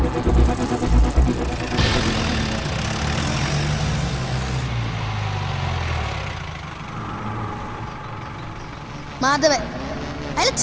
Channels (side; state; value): both; identical; correlation 1.00